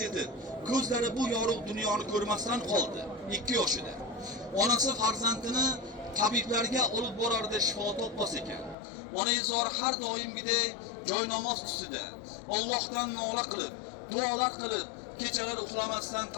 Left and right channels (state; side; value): drops out; right; at 8.8 s